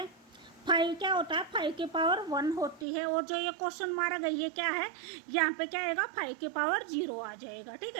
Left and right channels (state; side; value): drops out; left; at 2.9 s